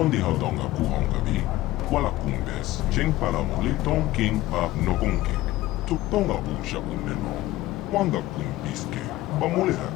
haudonga kuhongabi, wala kumbes, cheng palamuli ton king pap nokonkek. Tuktonga busha uneno, wanga kumbiske, bamulera,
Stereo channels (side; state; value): right; quieter; 16.7 dB